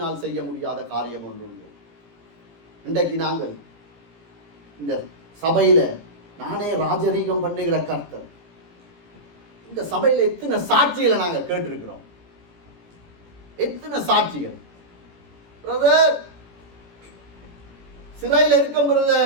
செய்ய முடியாத காரியம் ஒன்று உண்டு. இன்றைக்கு நாங்கள் இந்த சபையில நானே ராஜரீகம் பண்ணுகிற கர்த்தர், இந்த சபையில எத்தனை சாட்சிகளை நாங்கள் கேட்டிருக்கிறோம். எத்தனை சாட்சிகள். பிரதர் சிறையில் இருக்கும்,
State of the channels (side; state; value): left; late; 18 ms